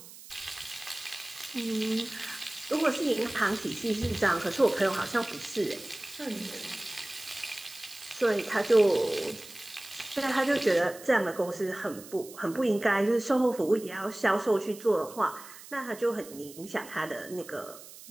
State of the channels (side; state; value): right; noise; hiss, 17 dB below the sound